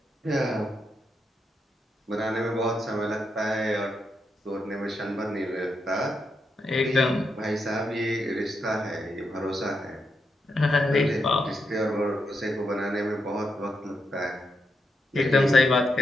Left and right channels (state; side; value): normal; both; correlation 0.83